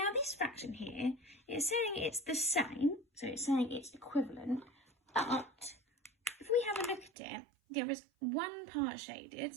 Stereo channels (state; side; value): drops out; left; at 7.1 s